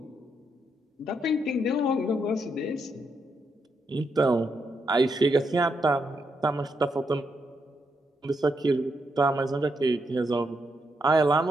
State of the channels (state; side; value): normal; both; correlation 0.80